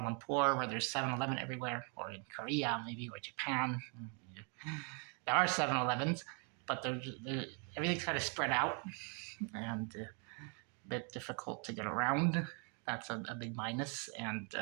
Lumpur, where there's 7-Eleven everywhere, or in Korea maybe, or Japan. There are 7-Elevens, but everything's kind of spread out and a bit difficult to get around. That's a big minus. And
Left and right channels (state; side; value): quieter; left; 38.4 dB